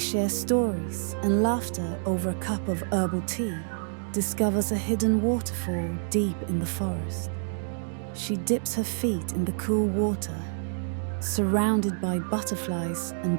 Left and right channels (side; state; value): left; silent; digital silence